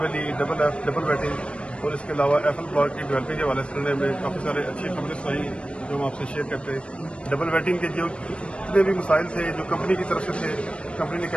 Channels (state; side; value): late; right; 0.059 ms